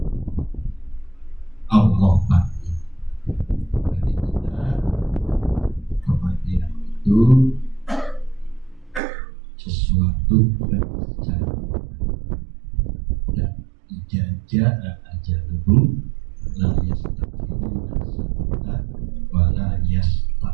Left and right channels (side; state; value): left; drops out; at 9.0 s